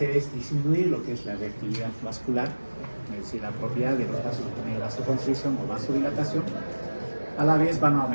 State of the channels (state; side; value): inverted; both; correlation -1.00